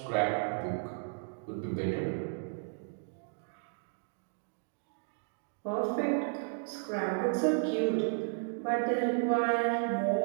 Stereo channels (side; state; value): left; silent; digital silence